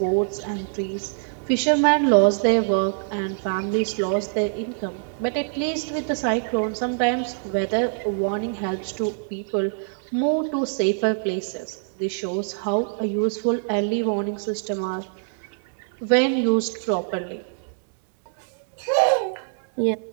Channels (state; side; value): silent; left; digital silence